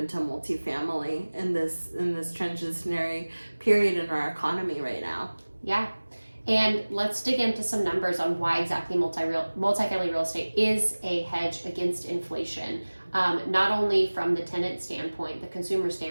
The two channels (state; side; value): inverted; both; correlation -1.00